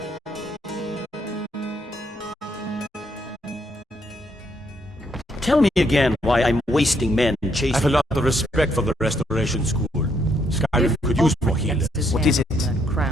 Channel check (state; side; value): normal; both; correlation 0.73